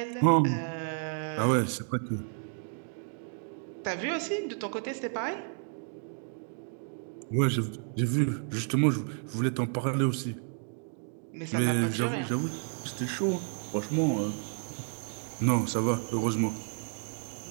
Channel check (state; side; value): silent; left; 57 dB below the other